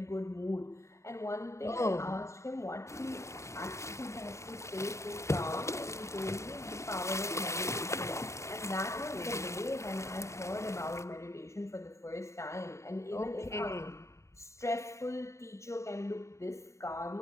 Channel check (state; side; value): late; right; 0.14 ms